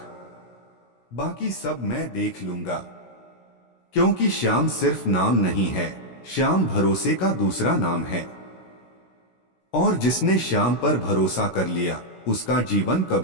बाकी सब मैं देख लूंगा। क्योंकि श्याम सिर्फ नाम नहीं है, श्याम भरोसे का दूसरा नाम है। और जिसने श्याम पर भरोसा कर लिया, उसका जीवन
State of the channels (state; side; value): late; right; 16 ms